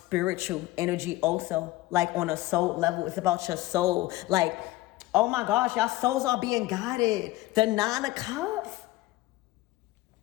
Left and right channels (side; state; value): right; quieter; 18.0 dB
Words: energy also. Like on a soul level, it's about your soul. Like, oh my gosh, y'all souls are being guided. The 9 of Cups.